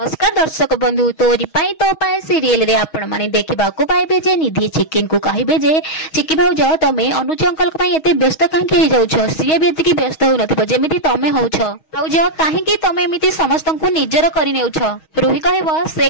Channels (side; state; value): right; late; 6.3 ms